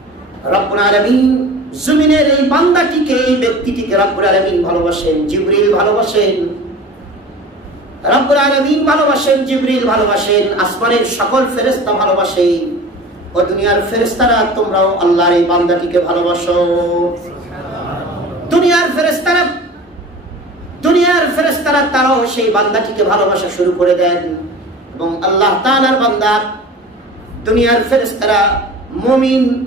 রব্বুল আলামিন জমিনের এই বান্দাটিকে, এই ব্যক্তিটিকে রব্বুল আলামিন ভালোবাসেন, জিবরিল ভালোবাসেন, রব্বুল আলামিন ভালোবাসেন, জিবরিল ভালোবাসেন, আসমানের সকল ফেরেশতা ভালোবাসেন। ও দুনিয়ার ফেরেশতারা, তোমরাও আল্লাহর এই বান্দাটিকে ভালোবাসো। দুনিয়ার ফেরেশতারা তারাও সেই বান্দাটিকে ভালোবাসা শুরু করে দেন, এবং আল্লাহ তাআলার বান্দা, দুনিয়ার ফেরেশতারা মুমিন,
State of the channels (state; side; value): normal; both; correlation 0.38